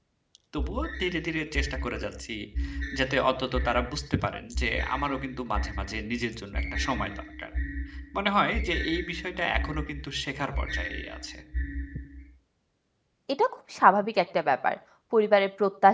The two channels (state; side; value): identical; both; correlation 1.00